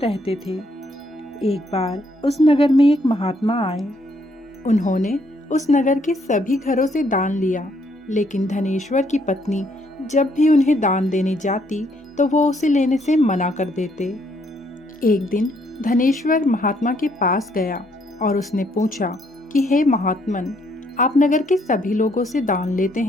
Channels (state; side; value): normal; both; correlation 0.70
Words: थे। एक बार उस नगर में एक महात्मा आए। उन्होंने उस नगर के सभी घरों से दान लिया, लेकिन धनेश्वर की पत्नी जब भी उन्हें दान देने जाती तो वो उसे लेने से मना कर देते। एक दिन धनेश्वर महात्मा के पास गया और उसने पूछा कि हे महात्मन, आप नगर के सभी लोगों से दान लेते